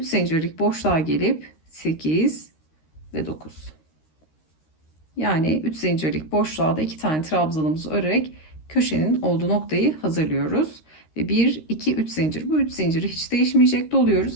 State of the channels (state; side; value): late; right; 13 ms